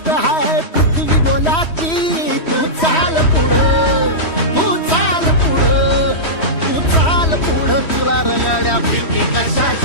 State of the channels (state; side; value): late; right; 3.1 ms